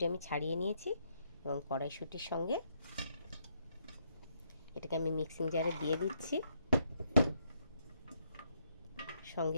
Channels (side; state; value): both; inverted; correlation -0.75